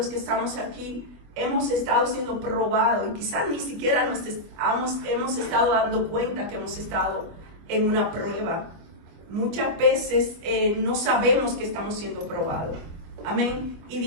que estamos aquí hemos estado siendo probados y quizás ni siquiera hemos estado dando cuenta que hemos estado en una prueba. Muchas veces no sabemos que estamos siendo probados. Amén. Y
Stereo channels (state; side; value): late; left; 25 ms